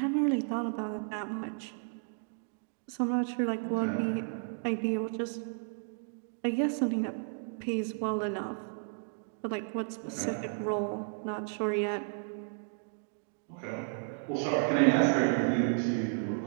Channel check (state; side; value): silent; left; 56 dB below the other